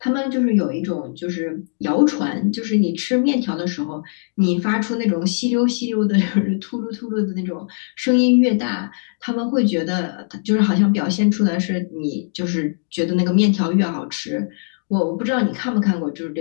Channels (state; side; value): silent; right; digital silence